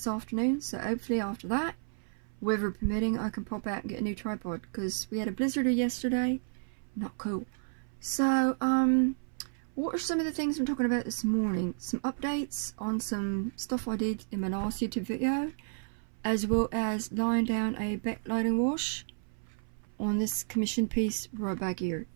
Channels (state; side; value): silent; left; 57 dB below the other